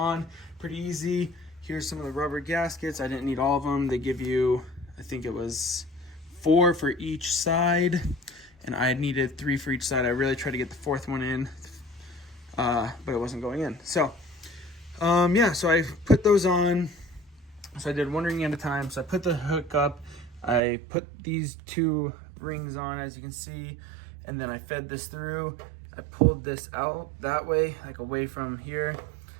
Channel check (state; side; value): drops out; left; at 20.6 s